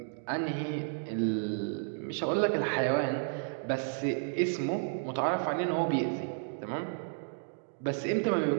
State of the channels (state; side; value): silent; left; digital silence